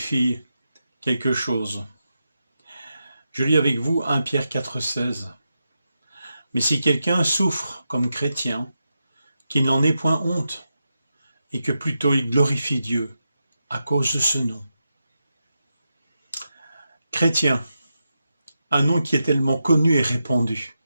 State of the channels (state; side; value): inverted; both; correlation -0.88